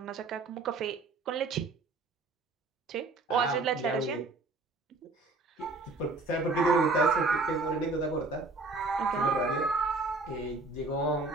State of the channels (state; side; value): quieter; left; 3.5 dB